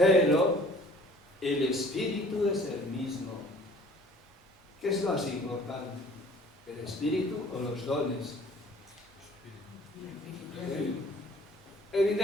el espíritu es el mismo. ¿Qué es más importante? ¿El espíritu o los dones?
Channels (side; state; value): both; normal; correlation 0.52